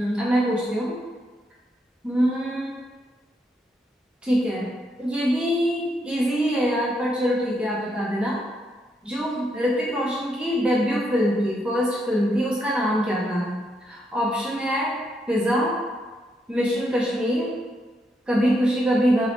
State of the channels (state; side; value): normal; both; correlation 0.79